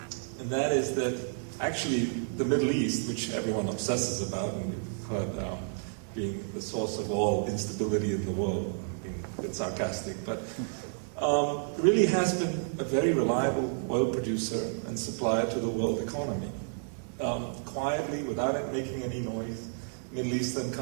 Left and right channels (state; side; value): silent; left; digital silence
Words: and that is that actually the Middle East, which everyone obsesses about, and we've heard being the source of all instability in the world, being a bit sarcastic, but really has been a very reliable oil producer and supplier to the world economy. Quietly, without it making any noise, Middle Eastern